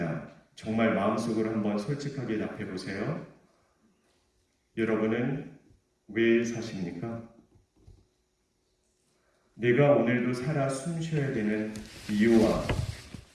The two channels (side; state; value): both; identical; correlation 1.00